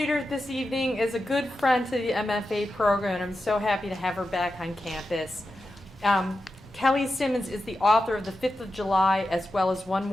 this evening is a good friend to the MFA program, and I'm so happy to have her back on campus. Kelly Simmons is the author of The 5th of July, as well as One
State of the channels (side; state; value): both; normal; correlation 0.90